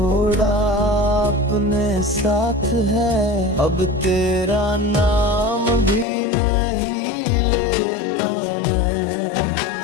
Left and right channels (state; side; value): drops out; right; at 6.1 s